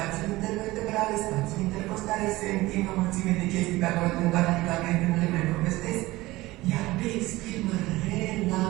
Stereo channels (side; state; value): left; quieter; 19.1 dB